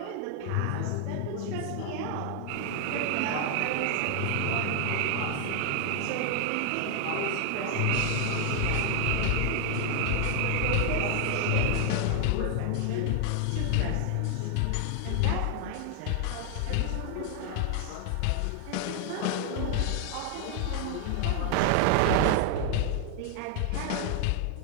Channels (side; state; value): both; different; correlation 0.00